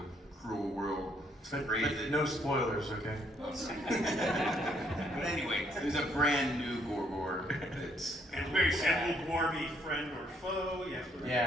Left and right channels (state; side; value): normal; both; correlation 0.69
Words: cruel world. But no spoilers, okay? But anyway, there's a brand new Gor-Gor that's And very sad. Will Gwar be friend or foe?